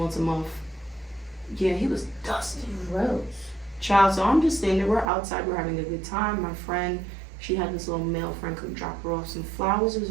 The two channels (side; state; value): left; drops out; at 5.1 s